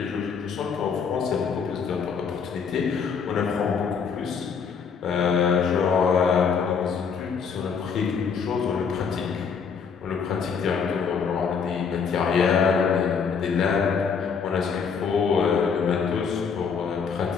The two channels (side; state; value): right; quieter; 6.2 dB